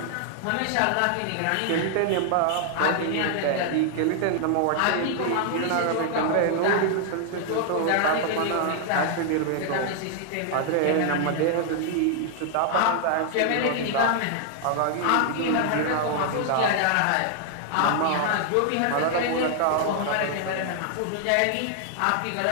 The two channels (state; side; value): different; both; correlation 0.00